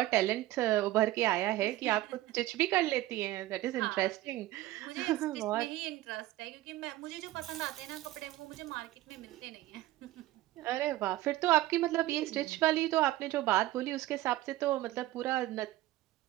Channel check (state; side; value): quieter; left; 16.4 dB